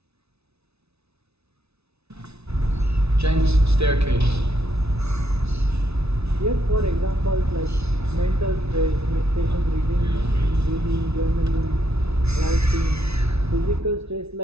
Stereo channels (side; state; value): left; late; 0.80 ms